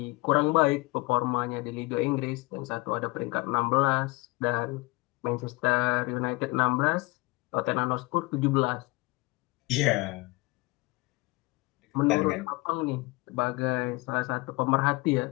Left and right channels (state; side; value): quieter; right; 23.8 dB